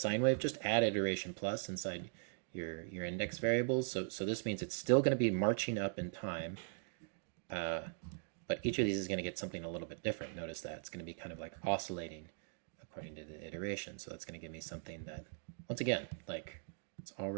wave, just add iteration plus inside your index variables. So this means it's still going to be marching up in time, but each of these is going to get something a little bit different. Notice that it's going to be kind of like oscillating according to the iteration. So that's going to give me something that, once again, like it's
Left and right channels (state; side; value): silent; left; digital silence